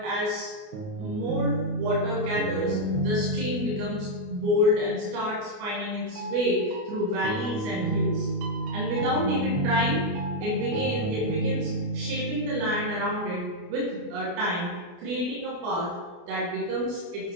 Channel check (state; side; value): late; left; 29 ms